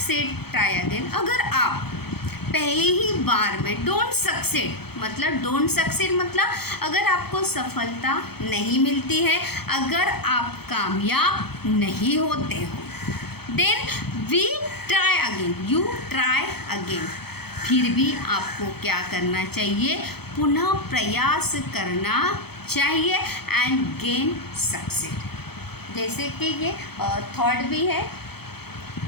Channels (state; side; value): late; right; 0.96 ms